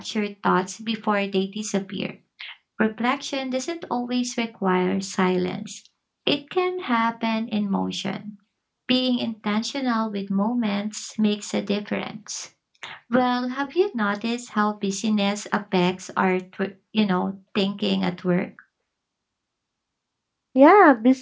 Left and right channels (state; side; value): identical; both; correlation 1.00